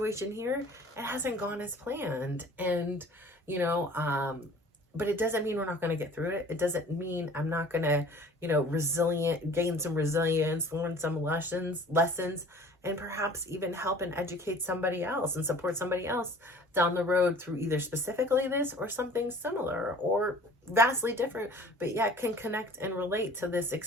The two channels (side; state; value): both; normal; correlation 0.47